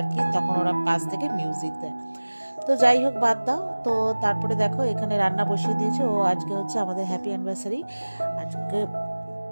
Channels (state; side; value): inverted; both; correlation -1.00